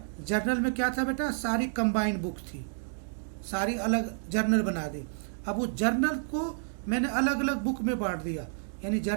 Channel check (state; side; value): silent; left; digital silence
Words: जर्नल में क्या था बेटा, सारी कंबाइंड बुक थी, सारी अलग जर्नल बना दी. अब वो जर्नल को मैंने अलग अलग बुक में बांट दिया, यानी